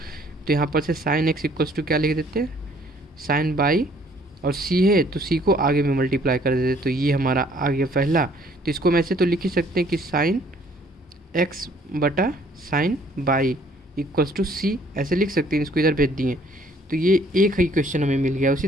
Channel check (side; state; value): both; normal; correlation 0.61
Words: यहाँ पर से साइन एक्स इक्वल्स टू क्या लिख देते हैं, साइन बाई, और सी है तो सी को आगे में मल्टीप्लाई कर देते, तो ये हमारा आ गया पहला। तो इसको हम ऐसे तो लिख ही सकते हैं कि साइन एक्स बटा साइन बाई इक्वल्स टू सी, ऐसे लिख सकते हैं। इसको इधर भेज दिए तो ये एक ही क्वेश्चन हमें मिल गया। उसी